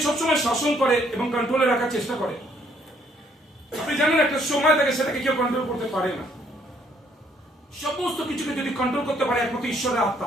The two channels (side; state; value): both; normal; correlation 0.67